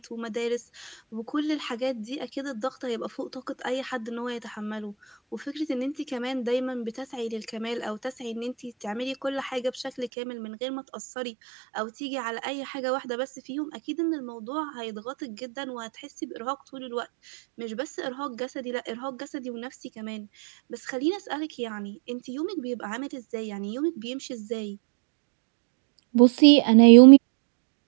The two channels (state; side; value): drops out; left; at 10.1 s